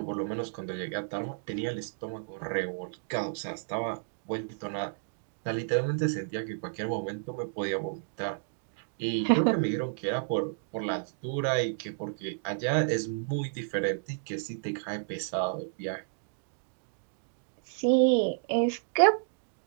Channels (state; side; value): silent; left; digital silence